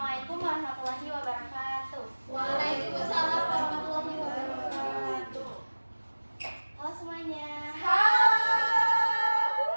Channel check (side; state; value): both; inverted; correlation -1.00